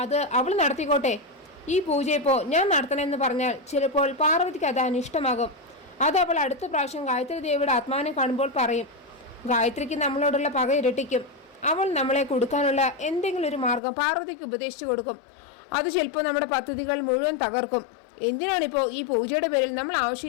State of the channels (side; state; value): right; drops out; at 13.8 s